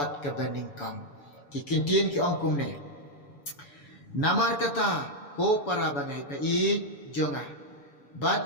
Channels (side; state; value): right; late; 7.0 ms